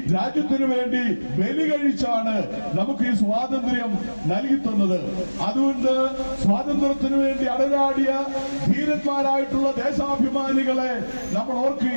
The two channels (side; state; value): both; inverted; correlation -1.00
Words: രാജ്യത്തിനു വേണ്ടി ബലി കഴിച്ചാണ് നമുക്ക് ഈ സ്വാതന്ത്ര്യം നൽകി തന്നത്. അതുകൊണ്ട് സ്വാതന്ത്ര്യത്തിനു വേണ്ടി അടരാടിയ ധീരന്മാരായിട്ടുള്ള ദേശാഭിമാനികളെ നമ്മൾ